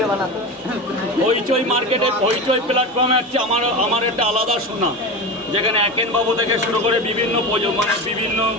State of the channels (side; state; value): both; normal; correlation 0.24